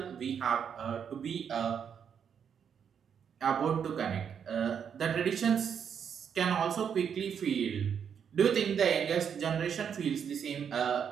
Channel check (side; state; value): left; quieter; 7.6 dB